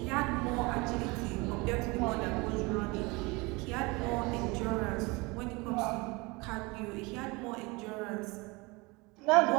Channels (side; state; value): left; quieter; 25.5 dB